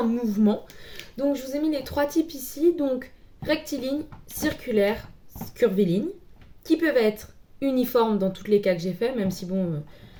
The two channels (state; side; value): identical; both; correlation 1.00